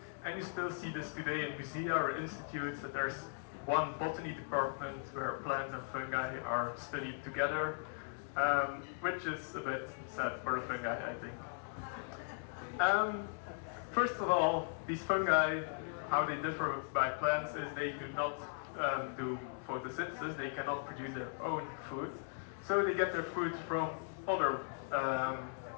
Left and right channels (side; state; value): right; silent; digital silence